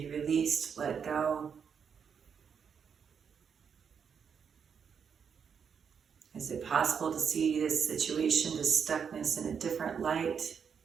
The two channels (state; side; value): quieter; left; 6.9 dB